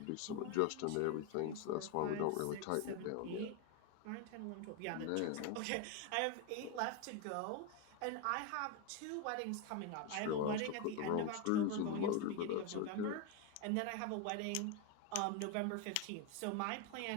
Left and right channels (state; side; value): different; both; correlation 0.02